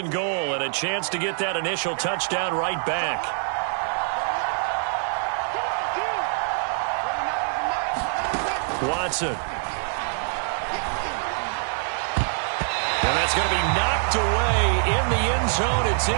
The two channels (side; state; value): left; silent; 62 dB below the other